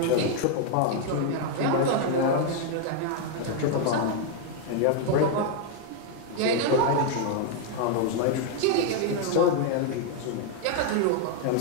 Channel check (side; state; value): both; different; correlation 0.00